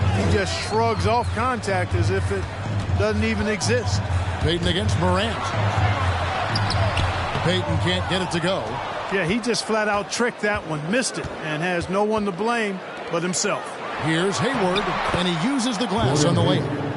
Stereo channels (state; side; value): identical; both; correlation 1.00